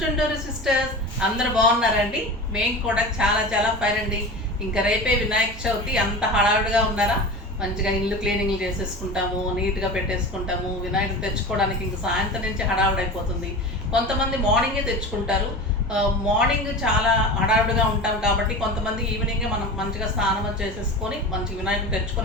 చుంటూరు sisters. అందరూ బాగున్నారండి? మేము కూడా చాలా చాలా ఫైన్ అండి. ఇంకా రేపే వినాయక చవితి. అంత హడావుడిగా ఉన్నారా? మంచిగా ఇల్లు క్లీనింగ్ చేసేసుకుంటాము, నీట్గా పెట్టేసుకుంటాము. వినాయకుడు తెచ్చుకోవడానికి ఇంక సాయంత్రం నుంచి హడావుడైపోతుంది. కొంతమంది మార్నింగే తెచ్చుకుంటారు. మార్నింగ్ చాలా హడావుడిగా ఉంటాం కాబట్టి కొంతమంది ఈవినింగే మనం మంచిగా స్నానం చేసేసుకొని మంచి వినాయకుడు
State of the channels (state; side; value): normal; both; correlation 0.31